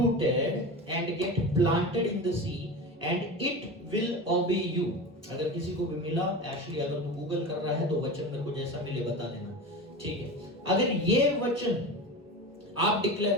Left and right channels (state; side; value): normal; both; correlation 0.28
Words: and get planted in the sea and it will obey you। अगर किसी को भी मिला, actually अगर तू Google कर रहा है तो वचन मेरे को जैसा मिले बता देना, ठीक है। अगर ये वचन आप डिक्लेयर